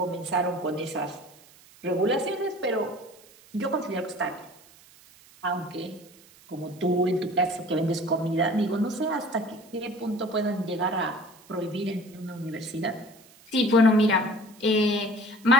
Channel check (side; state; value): right; noise; hiss, 25 dB below the sound